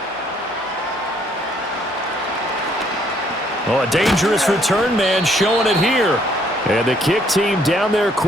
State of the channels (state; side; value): normal; both; correlation 0.66